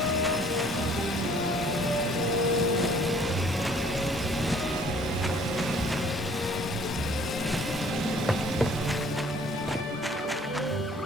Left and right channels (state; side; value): normal; both; correlation 0.57